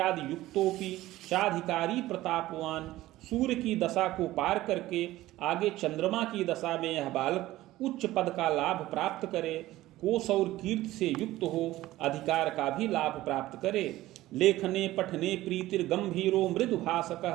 युक्तोपि चाधिकारी प्रतापवान। सूर्य की दशा को पार करके आगे चंद्रमा की दशा में यह बालक उच्च पद का लाभ प्राप्त करे। कोश और कीर्ति से युक्त हो, अधिकार का भी लाभ प्राप्त करे। लेखने पठने प्रीतिर गंभीरो मृदु भाषक।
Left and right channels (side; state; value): left; quieter; 16.3 dB